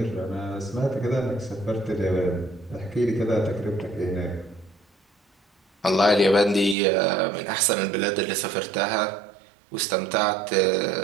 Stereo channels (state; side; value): drops out; left; at 6.8 s